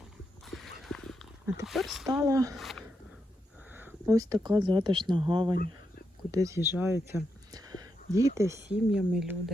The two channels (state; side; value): normal; both; correlation 0.84